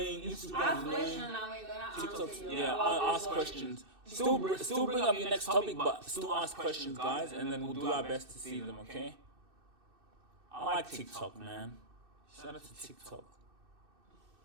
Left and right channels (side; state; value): left; late; 2.6 ms